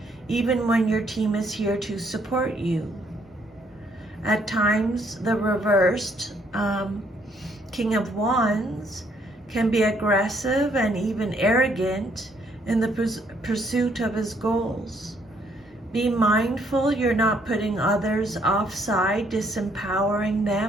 even when your team is here to support you. At times, the reversed King of Wands can be aggressive and even arrogant in the pursuit of his goals. Be mindful you're not putting others offside, disempowering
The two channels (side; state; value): both; normal; correlation 0.68